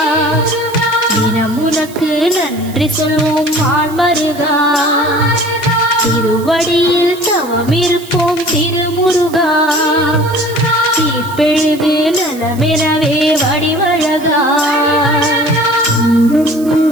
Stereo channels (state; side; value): noise; right; hiss, 19 dB below the sound